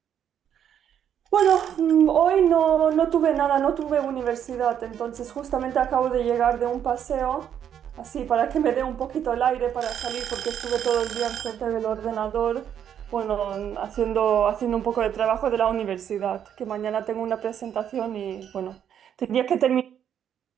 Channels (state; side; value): quieter; left; 9.2 dB